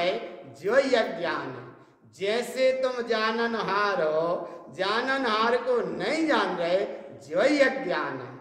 जो यह ज्ञान है। जैसे तुम जाननहार हो, जाननहार को नहीं जान रहे, जो यह ज्ञान है।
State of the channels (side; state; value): both; identical; correlation 1.00